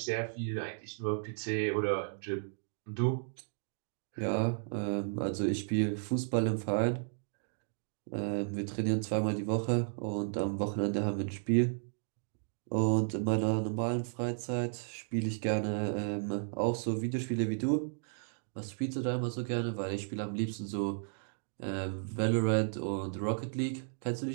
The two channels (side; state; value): left; silent; digital silence